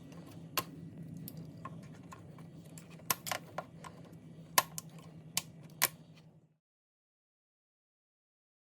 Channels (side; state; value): both; identical; correlation 1.00